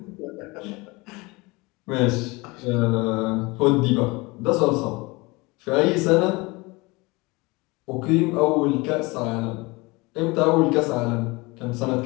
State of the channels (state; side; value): quieter; right; 24.4 dB